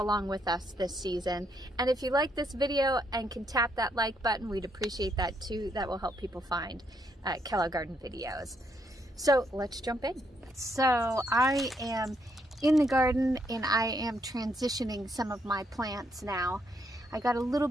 with us this season. And if you like this video and can tap that like button, we'd appreciate that too. That will help people find Pickle Garden videos. So let's jump in. So I am in the garden and I am transitioning some of my plants now. I got a little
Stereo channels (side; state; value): both; normal; correlation 0.75